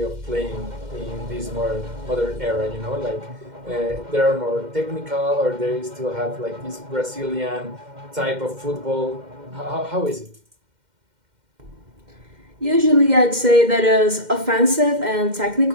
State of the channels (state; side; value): late; left; 2.1 ms